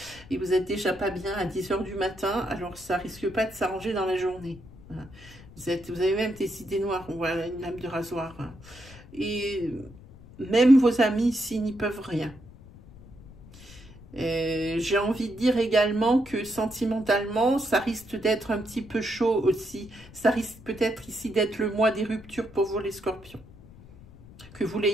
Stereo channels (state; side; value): noise; left; rumble, 20 dB below the sound